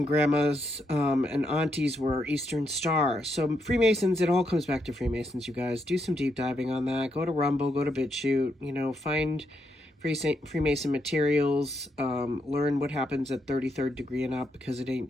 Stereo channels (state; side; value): normal; both; correlation 0.79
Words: grandmas and aunties were Eastern Star. So Freemasons, it all comes back to Freemasons, you guys. Do some deep diving on that. Go to Rumble, go to BitChute, find Freemason materials, learn what happens at 33rd degree and up, because it ain't